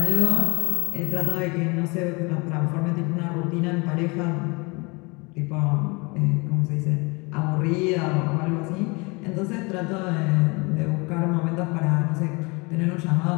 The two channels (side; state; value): right; quieter; 28.0 dB